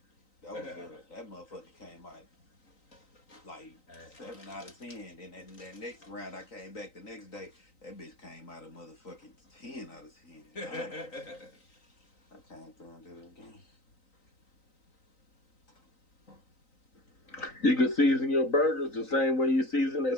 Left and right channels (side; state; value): right; late; 3.9 ms